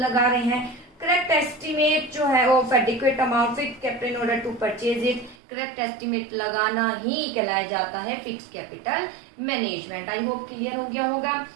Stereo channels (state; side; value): drops out; left; at 5.4 s